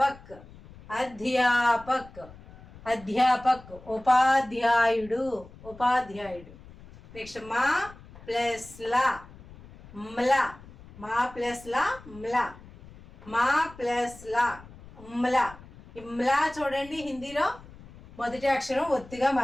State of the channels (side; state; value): left; noise; rumble, 20 dB below the sound